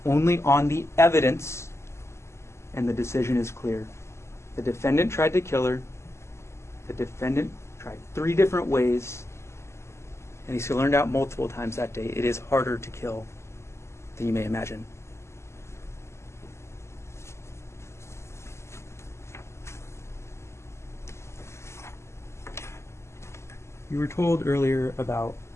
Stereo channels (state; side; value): late; right; 0.13 ms